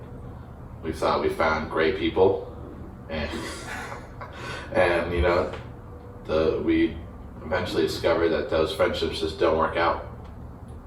We thought we found great people and you know, we eventually discovered that those friendships just don't work out.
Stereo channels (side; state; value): both; identical; correlation 1.00